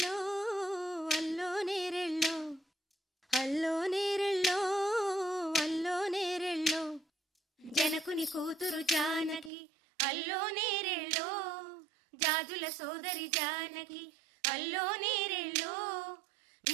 అల్లో నేరెళ్ళో అల్లో నేరెళ్ళో అల్లో నేరెళ్ళో జనకుని కూతురు జానకి అల్లో నేరెళ్ళో జాజుల సోదరి జానకి అల్లో నేరెళ్ళో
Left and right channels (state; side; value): drops out; left; at 9.5 s